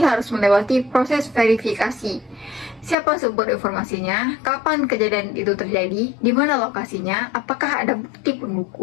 melewati proses verifikasi. Siapa sumber informasinya, kapan kejadian itu terjadi, di mana lokasinya, apakah ada bukti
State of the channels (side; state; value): right; drops out; at 3.0 s